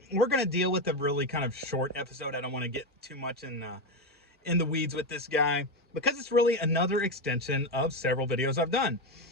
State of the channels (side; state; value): both; normal; correlation 0.11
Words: we're going to deal with a really kind of short episode. I don't want to get too much in the weeds with this guy because it's really another extension of several videos I've done